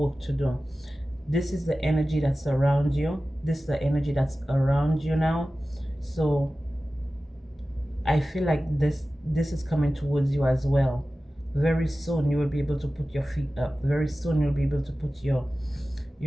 to do. This is the energy that's around you. This is the energy that's around you now. So I feel like this is coming towards you as well. Very soon you will be able to put your feet up. Very soon you'll be able to put your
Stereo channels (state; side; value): normal; both; correlation 0.95